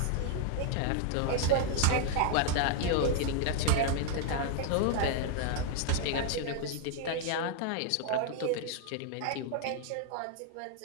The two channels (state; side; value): different; both; correlation 0.00